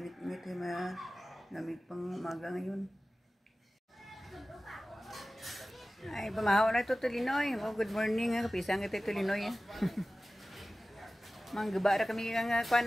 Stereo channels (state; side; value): normal; both; correlation 0.97